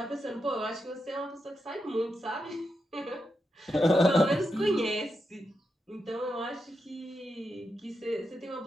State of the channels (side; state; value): both; normal; correlation 0.86